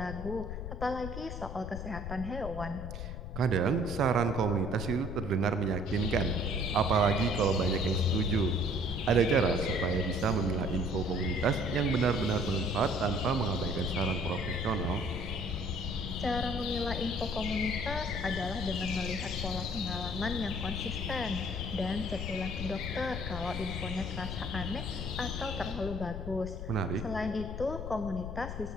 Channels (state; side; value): noise; left; rumble, 7 dB below the sound